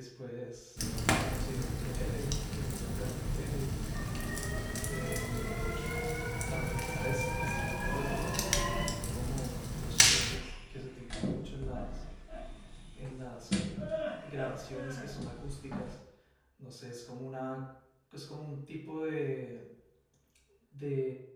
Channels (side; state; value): both; identical; correlation 1.00